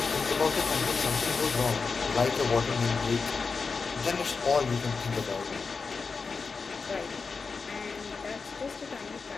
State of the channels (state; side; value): quieter; right; 4.8 dB